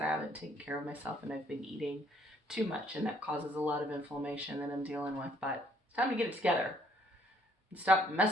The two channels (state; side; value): normal; both; correlation 0.65